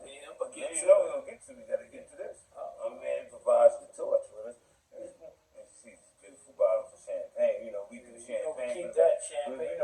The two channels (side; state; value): both; identical; correlation 1.00